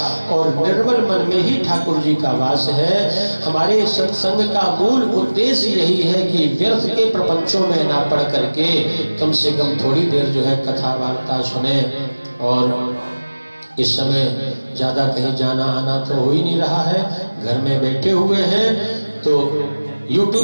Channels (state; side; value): inverted; both; correlation -1.00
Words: और निर्मल मन में ही ठाकुर जी का वास है। हमारे सत्संग का मूल उद्देश्य यही है कि व्यर्थ के प्रपंचों में ना पड़ करके कम से कम थोड़ी देर जो है कथा वार्ता सुने। और इस समय ज्यादा कहीं जाना आना तो हो ही नहीं रहा है, घर में बैठे हुए हैं, तो